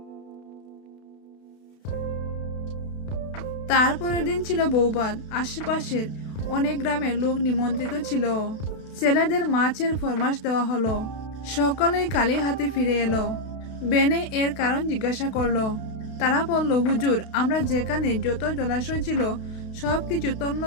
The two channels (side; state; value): right; late; 32 ms